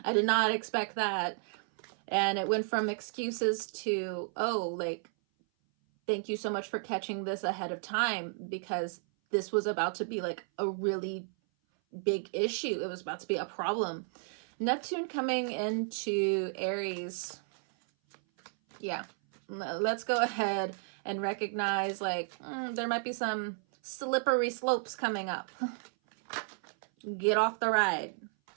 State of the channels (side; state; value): left; silent; 56 dB below the other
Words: did not expect that. And it went from excuses to, oh, like, thank you so much for catching this ahead of time, because this was about to be like a really big issue. It was about to be a problem. Neptune coming into Aries. Yeah, let's go ahead and recognize like there might be some slippery slopes coming up. Get off the ride.